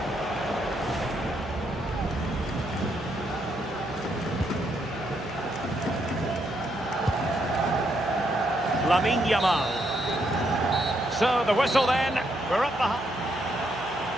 Lamine Yamal. So the whistle then. We're up the...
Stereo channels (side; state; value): right; noise; hum, 17 dB below the sound